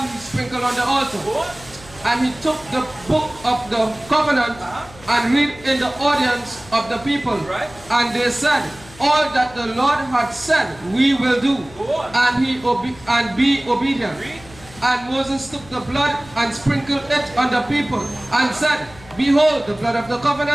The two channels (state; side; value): noise; left; hum, 21 dB below the sound